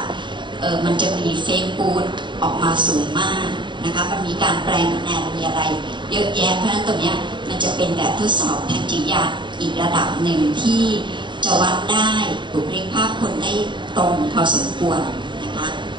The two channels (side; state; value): left; late; 0.23 ms